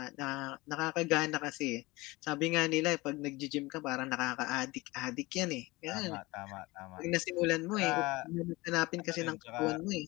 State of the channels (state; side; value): quieter; right; 22.0 dB